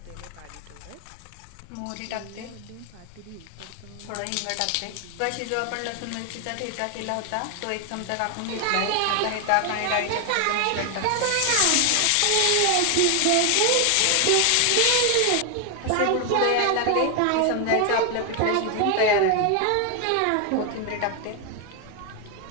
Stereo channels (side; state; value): both; different; correlation 0.01